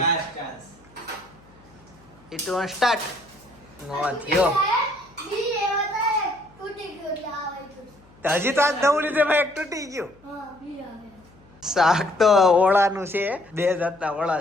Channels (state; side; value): noise; left; hum, 28 dB below the sound